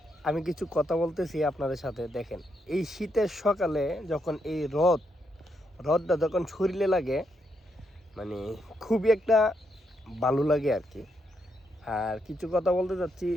আমি কিছু কথা বলতেছি আপনাদের সাথে। দেখেন, এই শীতের সকালে যখন এই রোদটা যখন শরীরে লাগে, মানে খুবই একটা ভালো লাগে আর কি। আর কিছু কথা বলতে চাচ্ছি,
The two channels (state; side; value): normal; both; correlation 0.79